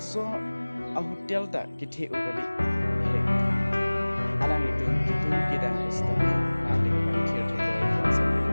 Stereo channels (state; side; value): inverted; both; correlation -1.00